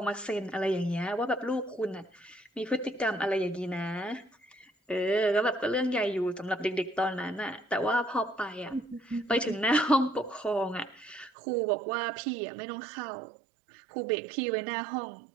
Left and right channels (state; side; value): drops out; left; at 11.3 s